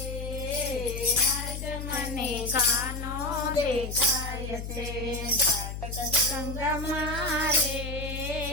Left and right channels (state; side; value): noise; left; hum, 6 dB below the sound